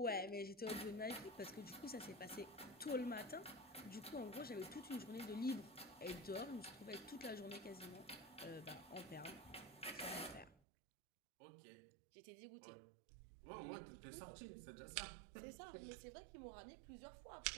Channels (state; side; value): drops out; left; at 10.6 s